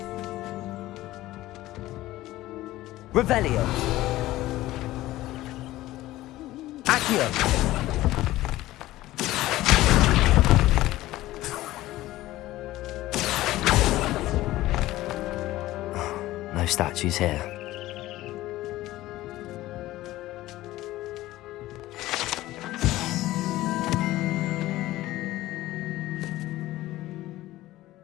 Revelio. Accio. No statues here.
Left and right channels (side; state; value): right; quieter; 16.4 dB